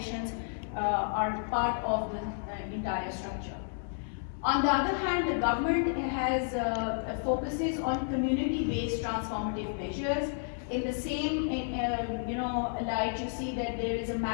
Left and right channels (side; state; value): right; silent; 57 dB below the other